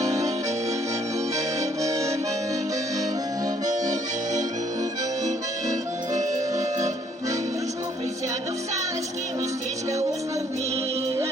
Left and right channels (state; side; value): normal; both; correlation 0.65